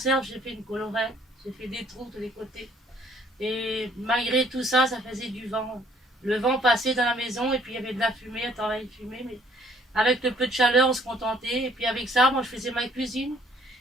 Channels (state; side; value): normal; both; correlation 0.62